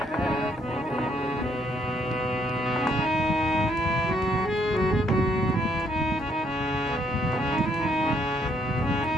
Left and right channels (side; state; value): both; normal; correlation 0.71